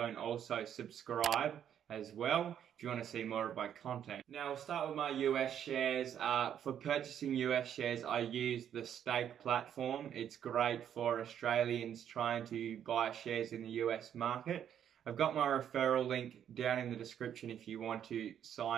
and also subscribe as well if you want to see more of my content. Now I'll start with my US shares. For purchasing US shares, I use the Stake platform. It's great for Australians trying to buy shares in the US market. I've got my referral link down in the description if you want to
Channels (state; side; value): quieter; left; 9.4 dB